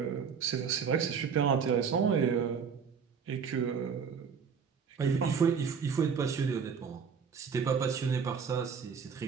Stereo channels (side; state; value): left; quieter; 6.4 dB